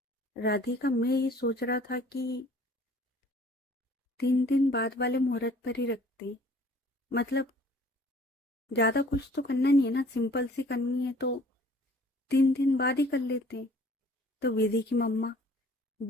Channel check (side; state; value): both; normal; correlation 0.53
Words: राधिका मैं ये सोच रहा था कि 3 दिन बाद वाले मुहूर्त पर ही रखते, मतलब ज्यादा कुछ तो करना नहीं है ना, सिंपल सी करनी है तो 3 दिन बाद ही कर लेते। तो विधि की मम्मा